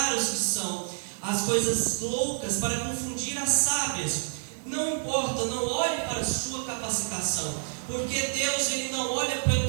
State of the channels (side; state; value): left; silent; 59 dB below the other